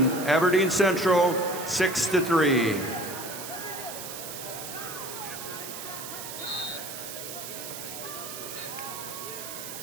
Aberdeen Central, 6-3.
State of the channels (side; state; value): right; noise; hiss, 9 dB below the sound